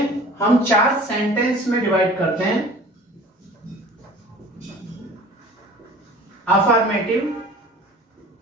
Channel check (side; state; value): both; normal; correlation 0.45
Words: हम चार सेंटेंस में डिवाइड करते हैं: अफर्मेटिव,